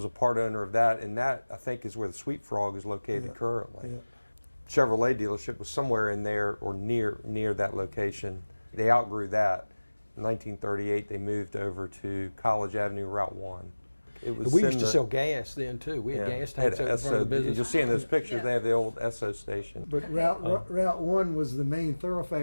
a part owner of that, and that, I think, is where the Sweet Frog is located currently. Yeah. Chevrolet dealership was somewhere in there or near that location. They outgrew that. In 1938, they moved over to College Avenue, Route 1. We used to sell gas then too. We had gas tanks over front of the business. You'll see in those pictures they have the old Esso station. But Route 1 was the main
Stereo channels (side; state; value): both; inverted; correlation -1.00